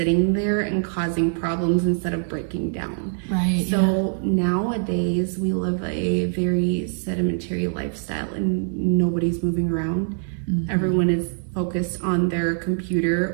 there and causing problems instead of breaking down. Right. So nowadays we live a very sedentary lifestyle and nobody's moving around. Everyone is focused on their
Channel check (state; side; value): silent; left; digital silence